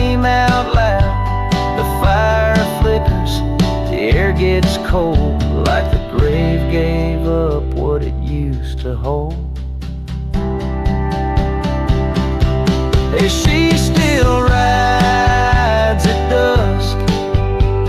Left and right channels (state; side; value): identical; both; correlation 1.00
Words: out loud, the fire flickers, the air gets cold, like the grave gave up what it used to hold. Hey, she still rides at dusk